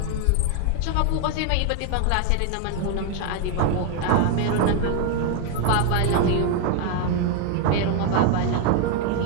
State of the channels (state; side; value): different; both; correlation 0.01